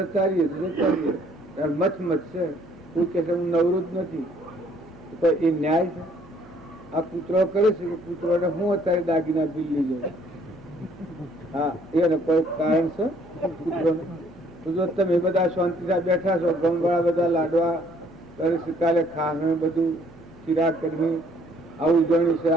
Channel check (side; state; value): right; noise; hum, 26 dB below the sound